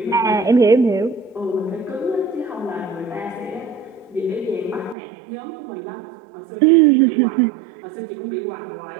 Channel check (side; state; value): left; drops out; at 5.0 s